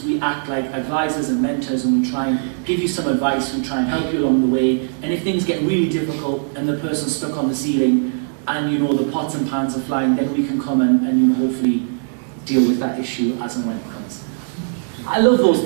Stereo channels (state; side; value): silent; left; digital silence